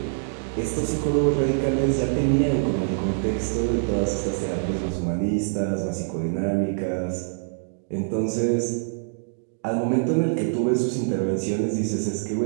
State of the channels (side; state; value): left; silent; digital silence